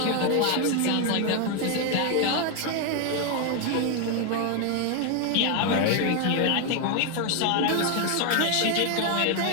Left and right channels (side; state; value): both; different; correlation 0.01